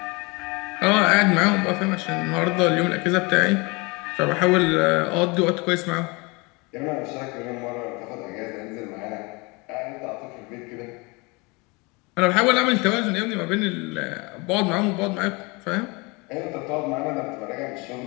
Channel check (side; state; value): right; quieter; 27.2 dB